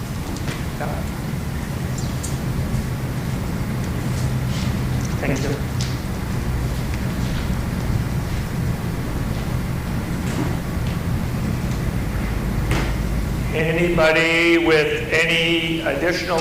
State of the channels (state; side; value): identical; both; correlation 1.00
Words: Yeah. Thank you. Anybody with any